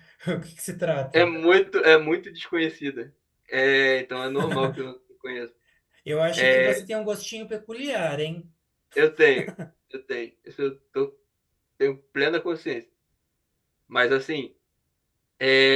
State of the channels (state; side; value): identical; both; correlation 1.00